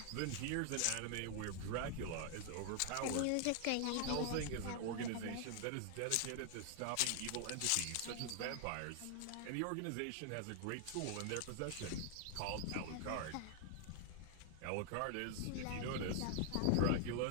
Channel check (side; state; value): both; different; correlation 0.00